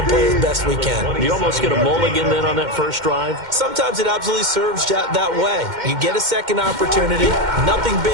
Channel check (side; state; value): left; late; 2.1 ms